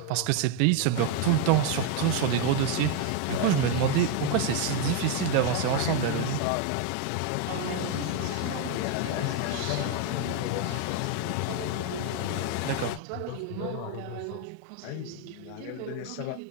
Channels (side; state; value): both; different; correlation 0.01